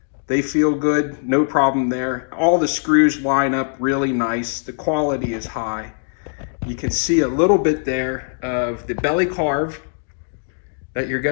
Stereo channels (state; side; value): silent; right; digital silence